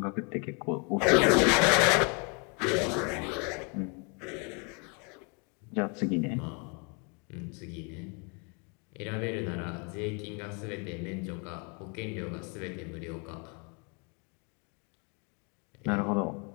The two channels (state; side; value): quieter; right; 33.8 dB